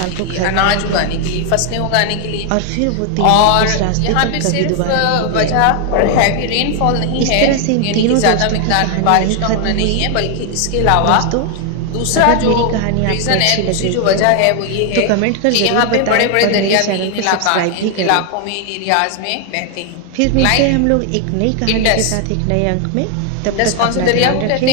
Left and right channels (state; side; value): different; both; correlation 0.00